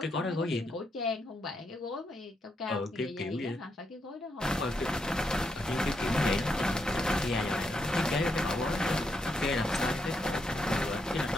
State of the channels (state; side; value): normal; both; correlation 0.80